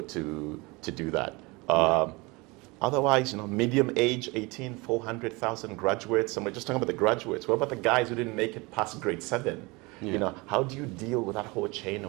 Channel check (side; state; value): left; quieter; 25.3 dB